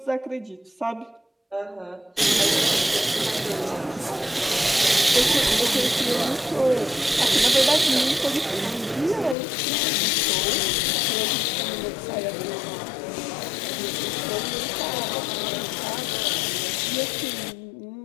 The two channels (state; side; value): drops out; right; at 9.3 s